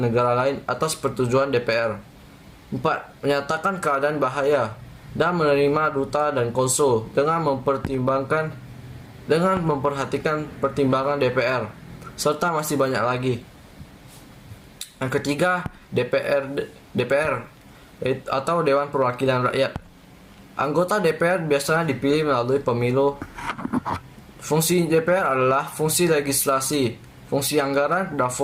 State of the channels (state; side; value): identical; both; correlation 1.00